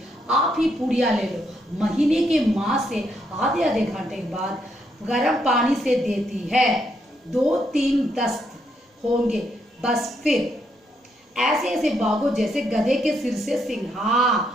आप ही पूड़िया ले लो। महीने के माँ से आधे आधे घंटे के बाद गर्म पानी से देती है। 2-3 दस्त होंगे बस, फिर ऐसे ऐसे भागो जैसे गधे के सिर से सिंह।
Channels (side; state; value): both; normal; correlation 0.76